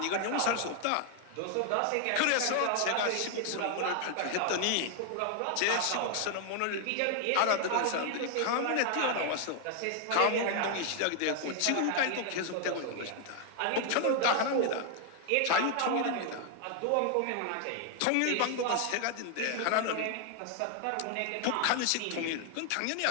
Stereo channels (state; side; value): different; both; correlation 0.00